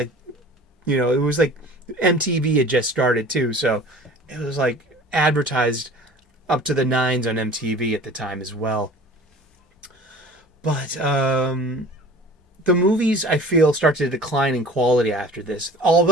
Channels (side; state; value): both; normal; correlation 0.44